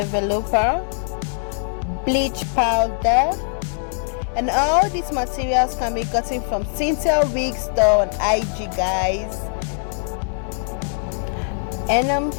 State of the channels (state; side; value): silent; right; 64 dB below the other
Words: bleach powder, and all these materials can be gotten from Cynthia Wig Store on IG, guys. And